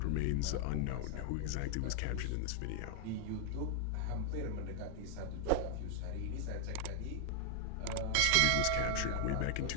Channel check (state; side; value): different; both; correlation 0.00